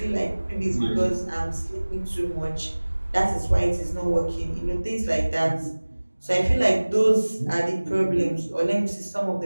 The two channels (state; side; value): inverted; both; correlation -1.00